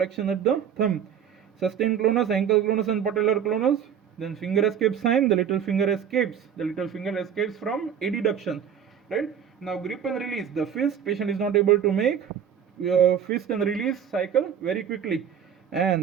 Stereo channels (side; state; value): left; quieter; 8.4 dB